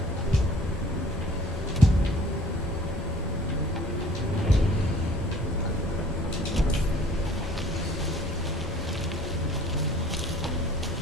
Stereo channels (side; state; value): both; normal; correlation 0.51